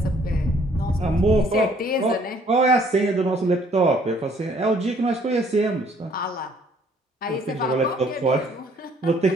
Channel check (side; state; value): both; normal; correlation 0.62